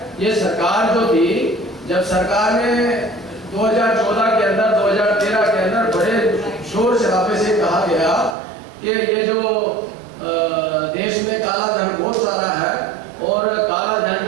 ये सरकार जो थी, जब सरकार ने 2014 के अंदर, 2013 के अंदर बड़े शोर शराबे से कहा गया कि ये जो देश में काला धन बहुत सारा है और काला धन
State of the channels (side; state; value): left; drops out; at 8.3 s